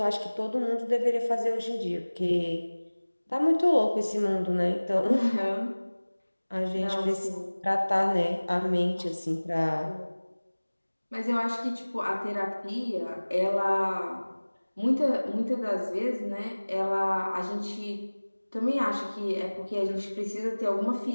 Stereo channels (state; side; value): inverted; both; correlation -1.00